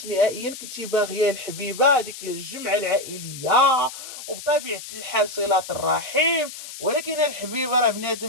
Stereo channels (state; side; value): noise; left; hiss, 12 dB below the sound